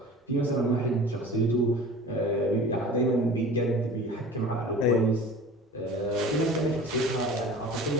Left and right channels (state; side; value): normal; both; correlation 0.40